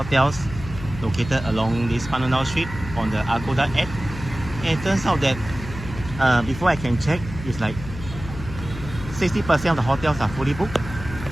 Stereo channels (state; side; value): noise; left; hum, 11 dB below the sound